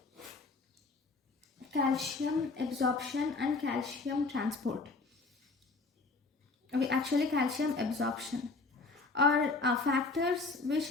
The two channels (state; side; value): quieter; right; 3.8 dB